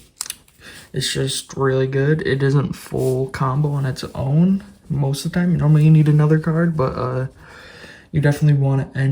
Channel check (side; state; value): both; identical; correlation 1.00